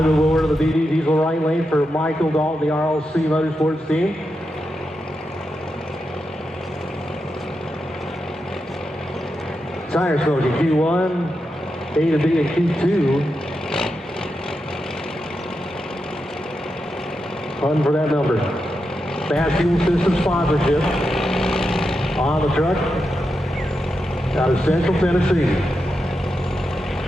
move over to the BD Diesel right lane for Michael Dalton, the RLC Motorsports team. Tire smoking Q1, A to B and Q2. Fun for that number. Fast Fuel System sponsorship on the truck out of Central Tennessee.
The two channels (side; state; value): both; normal; correlation 0.87